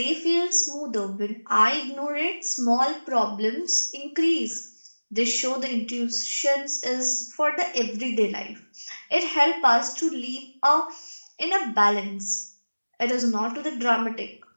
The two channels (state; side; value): inverted; both; correlation -1.00